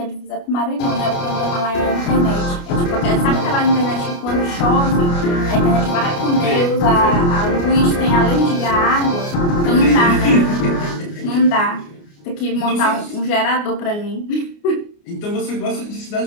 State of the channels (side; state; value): right; late; 29 ms